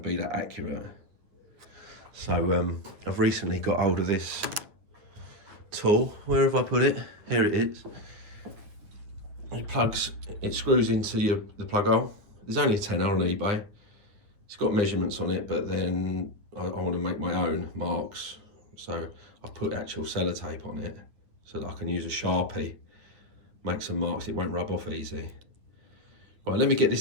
that accurate. So I've recently got hold of this tool. Where have I put it? Here it is. It screws into the plug hole. There's only a tenner on eBay. It's got measurements on it, but then I want to make my own marks. So I put actual sellotape on it so that I can use a Sharpie, make some marks. It won't rub off easy. Right, let me get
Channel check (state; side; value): late; left; 9.4 ms